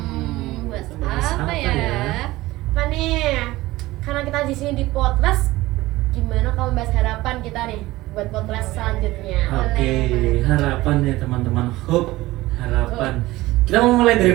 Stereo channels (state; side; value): quieter; left; 18.3 dB